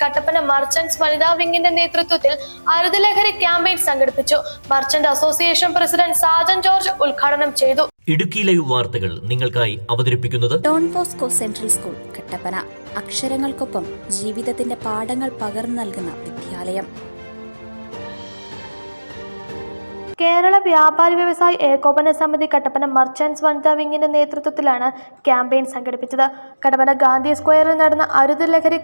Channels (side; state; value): both; inverted; correlation -1.00